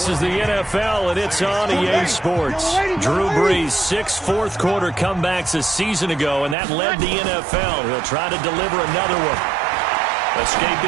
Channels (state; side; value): drops out; left; at 6.6 s